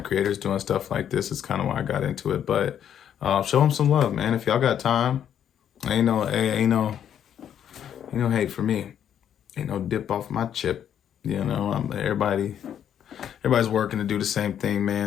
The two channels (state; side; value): quieter; right; 9.5 dB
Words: creators doing stuff like this. It's kind of why I got into it. But show them some love, man. If y'all got time, ain't no hate for me. Ain't no dip off my chip. You know, everybody's working to do the same thing,